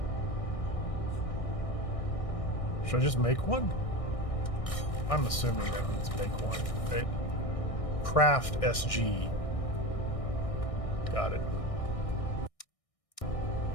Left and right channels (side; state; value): right; late; 1.6 ms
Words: Should I just make one? I'm assuming that means make one, right? Craft SG. Got it.